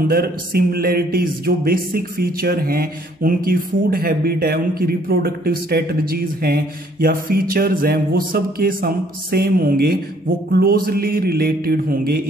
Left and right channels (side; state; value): both; normal; correlation 0.63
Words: सिमिलरिटीज, जो बेसिक फीचर हैं, उनकी फूड हैबिट है, उनकी रिप्रोडक्टिव स्ट्रेटजीज हैं या फीचर्स हैं, वो सब के सम सेम होंगे, वो क्लोजली रिलेटेड होंगे